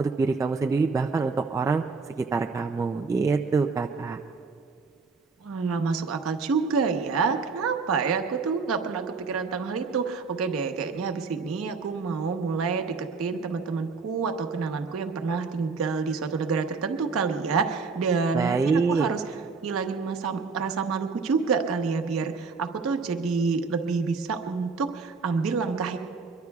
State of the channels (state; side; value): quieter; left; 4.6 dB